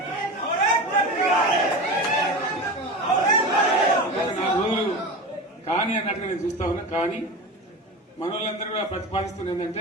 నా రోజులు కానీ అన్నట్టుగా నేను చూస్తా ఉన్నా. కానీ మనోళ్ళందరూ కూడా ప్రతిపాదిస్తుంది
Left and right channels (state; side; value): normal; both; correlation 0.27